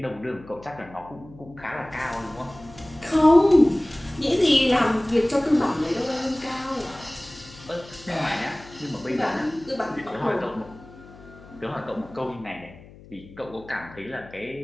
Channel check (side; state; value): left; noise; hum, 20 dB below the sound